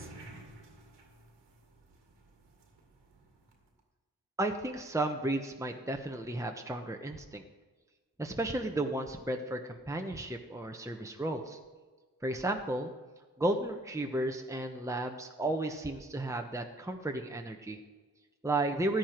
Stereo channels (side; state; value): both; normal; correlation 0.61